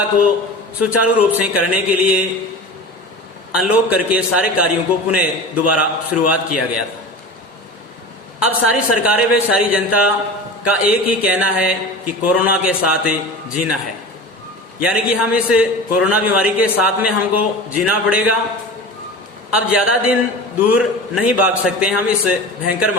को सुचारू रूप से करने के लिए अनलॉक करके सारे कार्यों को पुनः दोबारा शुरुआत किया गया था। अब सारी सरकारें व सारी जनता का एक ही कहना है कि कोरोना के साथ जीना है, यानी कि हम इस कोरोना बीमारी के साथ में हमको जीना पड़ेगा। अब ज्यादा दिन दूर नहीं भाग सकते हम इस भयंकर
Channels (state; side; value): normal; both; correlation 0.32